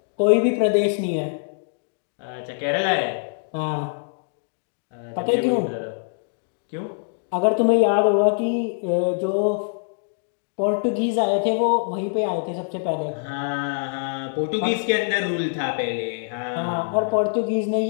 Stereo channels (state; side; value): silent; right; digital silence